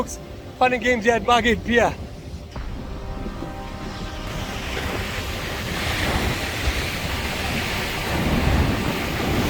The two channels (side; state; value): both; identical; correlation 1.00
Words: Fun and games here at Margate Pier.